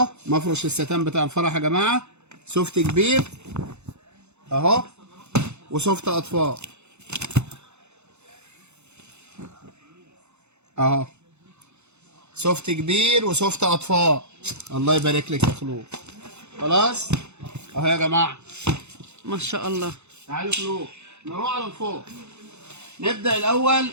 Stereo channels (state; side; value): late; left; 0.82 ms